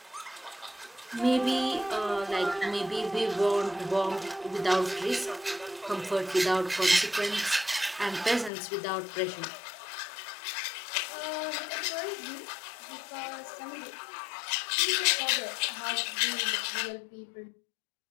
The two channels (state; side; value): drops out; right; at 8.5 s